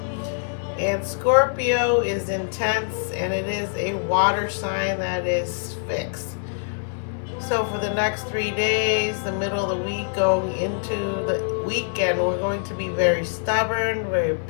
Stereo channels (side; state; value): right; silent; 60 dB below the other